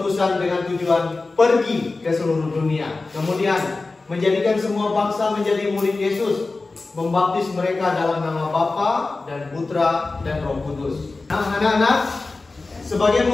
dengan tujuan pergi ke seluruh dunia. Kemudian menjadikan semua bangsa menjadi murid Yesus, membaptis mereka dalam nama Bapa dan Putra dan Roh Kudus. Nah, anak-anak, sebagai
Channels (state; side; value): quieter; right; 3.6 dB